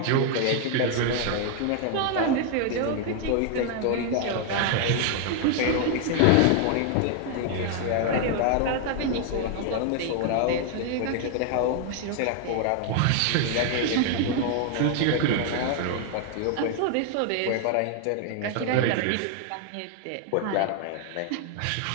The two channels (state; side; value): different; both; correlation 0.00